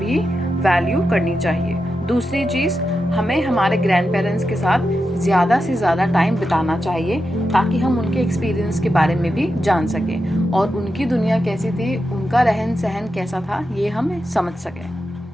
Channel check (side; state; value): both; normal; correlation 0.88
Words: वैल्यू करनी चाहिए. दूसरी चीज़, हमें हमारे ग्रैंड पेरेंट्स के साथ ज़्यादा से ज़्यादा टाइम बिताना चाहिए ताकि हम उनके एक्सपीरियंस के बारे में भी जान सकें और उनकी दुनिया कैसी थी, उनका रहन सहन कैसा था, ये हम समझ